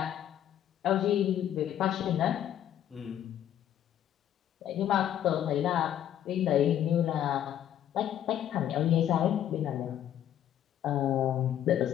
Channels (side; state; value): right; quieter; 10.8 dB